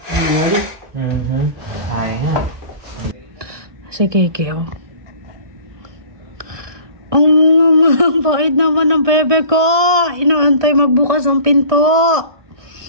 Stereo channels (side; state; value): left; late; 1.2 ms